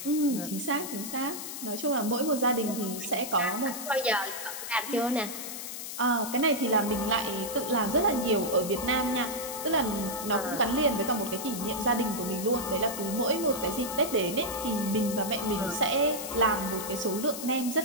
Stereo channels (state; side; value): noise; left; hiss, 8 dB below the sound